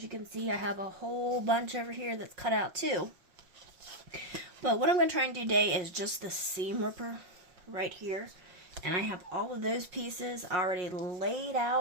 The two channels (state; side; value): late; left; 5.5 ms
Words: you can see, I have a whole bunch over here that's cut out too. But what I'm going to try and do today is just the seam ripper right here. And I have all of those pieces already laid